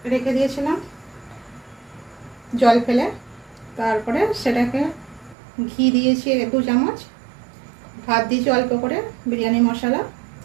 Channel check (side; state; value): left; drops out; at 5.4 s